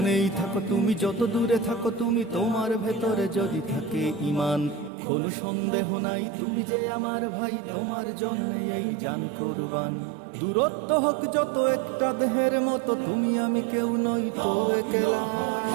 থাকো তুমি, যত দূরে থাকো তুমি, তোমার ভেতরে যদি থাকে ঈমান, কোনো সন্দেহ নাই তুমি যে আমার ভাই, তোমার জন্য এই জান কুরবান। দূরত্ব হোক যত একটা দেহের মতো, তুমি আমি কেউ নই তো একলা।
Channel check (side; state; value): left; drops out; at 4.9 s